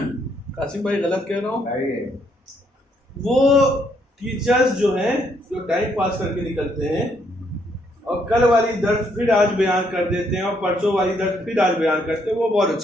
कासिम भाई गलत कह रहा हूँ? वो टीचर्स जो हैं जो टाइम पास करके निकलते हैं और कल वाली दर्स फिर आज बयान कर देते हैं और परसों वाली दर्स फिर आज बयान करते हैं, वो बहुत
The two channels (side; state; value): both; normal; correlation 0.72